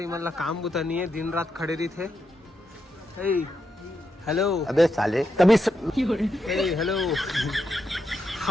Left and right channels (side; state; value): both; normal; correlation 0.83